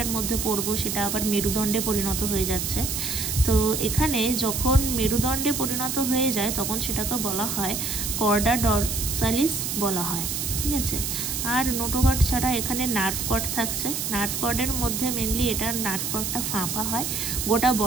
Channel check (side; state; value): right; noise; hiss, 2 dB below the sound